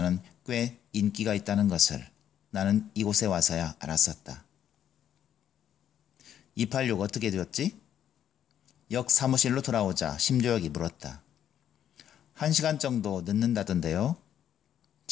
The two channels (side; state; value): right; quieter; 10.0 dB